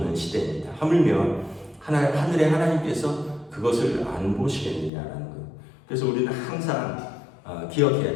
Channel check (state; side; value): drops out; right; at 4.9 s